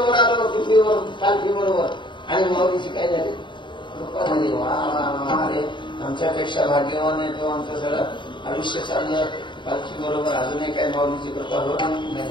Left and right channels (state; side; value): late; right; 0.23 ms